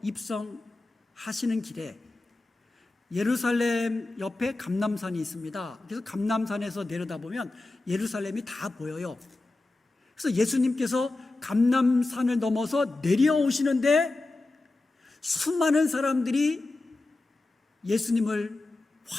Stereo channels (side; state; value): right; quieter; 3.1 dB